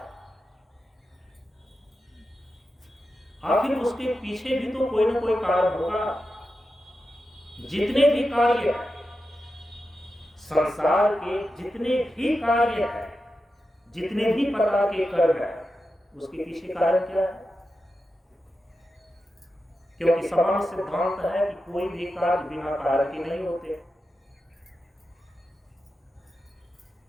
आखिर उसके पीछे भी तो कोई ना कोई कारण होगा। जितने भी कार्य हैं, संसार के जितने भी कार्य हैं, जितने भी प्रकार के कर्म हैं, उसके पीछे कारण क्या है? क्योंकि सामान्य सिद्धांत है कि कोई भी कार्य बिना कारण के नहीं होते।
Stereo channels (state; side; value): normal; both; correlation 0.90